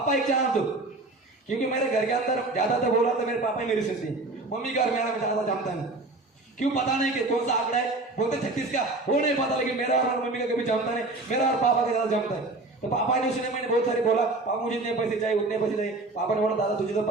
एक चांस दो। क्योंकि मेरे घर के अंदर ज्यादातर बोला था मेरे पापा ही मेरी सुनती, मम्मी का और मेरा ज्यादा जानता नहीं, क्यों पता नहीं कि कौन सा आंकड़ा है, बोलते 36 का, वो नहीं पता, लेकिन मेरा और मम्मी का कभी जानता नहीं, मेरा और पापा का ज्यादा जानता है। तो पापा ने सुने, मैंने बहुत सारे बोला पापा मुझे इतने पैसे चाहिए उतने पैसे चाहिए, पापा ने बोला दादा तुझे तो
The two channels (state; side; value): quieter; left; 3.1 dB